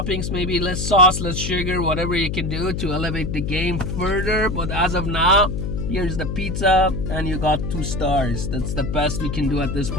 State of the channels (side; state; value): left; noise; hum, 3 dB below the sound